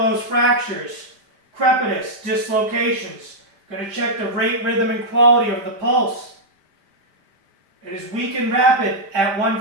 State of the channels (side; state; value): left; late; 5.1 ms